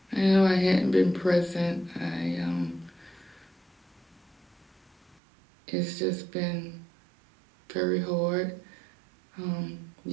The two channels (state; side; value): drops out; left; at 5.2 s